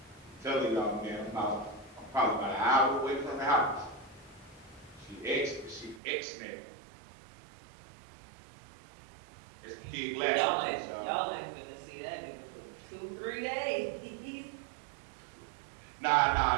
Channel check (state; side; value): drops out; left; at 6.0 s